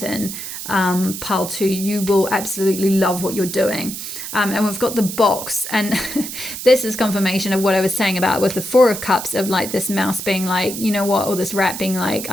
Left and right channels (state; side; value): noise; right; hiss, 8 dB below the sound